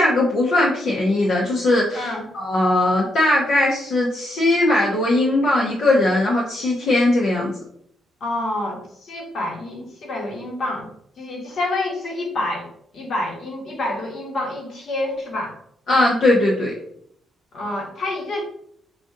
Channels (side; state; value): both; normal; correlation 0.79